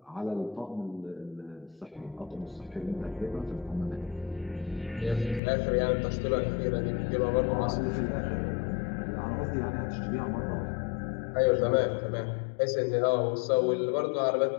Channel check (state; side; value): drops out; right; at 5.4 s